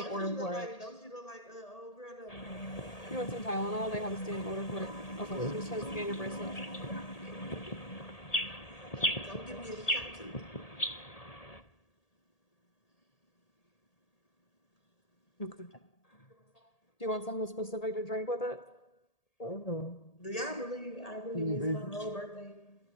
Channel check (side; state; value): right; late; 1.8 ms